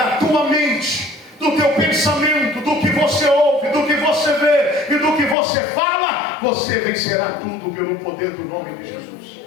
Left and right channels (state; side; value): drops out; right; at 5.4 s